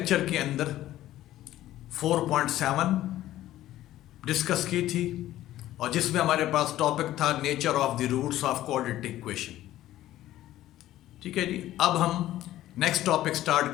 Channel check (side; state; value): right; quieter; 14.1 dB